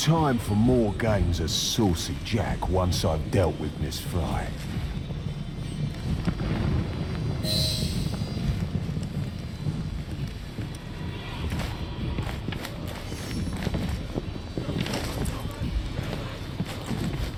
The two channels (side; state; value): both; identical; correlation 1.00